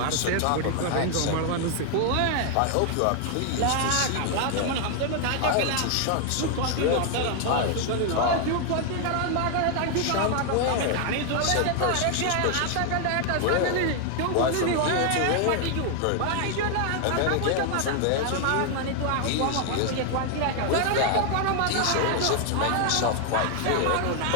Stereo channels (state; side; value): different; both; correlation 0.00